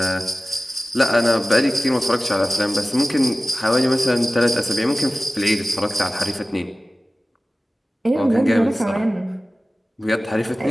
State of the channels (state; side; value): normal; both; correlation 0.96